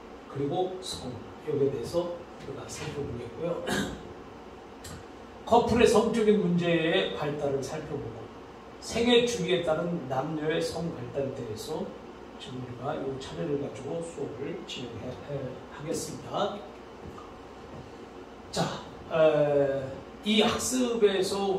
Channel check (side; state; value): both; identical; correlation 1.00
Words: 그리고 성, 여기에 대해서 우리가 살펴보겠고요. 커플의 성적인 문제의 발달을 살펴보고, 생애 주기에 따른 남녀의 성 발달에 대해서 지금 우리가 이 차례를 가지고 수업을 진행하겠습니다. 자, 이 학습에서